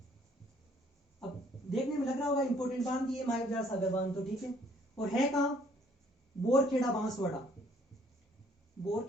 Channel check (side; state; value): both; normal; correlation 0.61